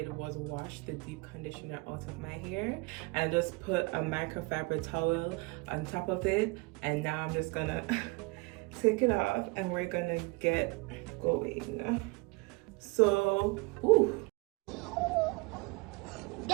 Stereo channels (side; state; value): left; quieter; 26.4 dB